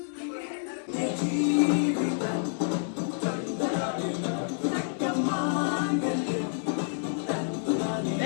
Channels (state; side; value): silent; right; 59 dB below the other